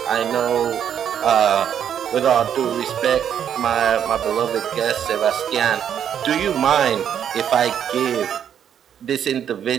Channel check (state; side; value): quieter; left; 9.0 dB